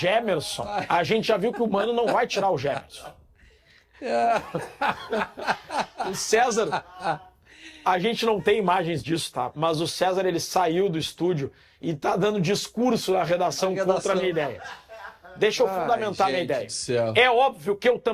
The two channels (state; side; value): identical; both; correlation 1.00